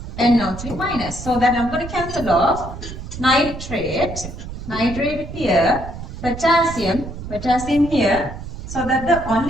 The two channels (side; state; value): right; noise; rumble, 10 dB below the sound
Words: NO3 minus. So that I'm going to cancel off nitrate here, potassium here. So that the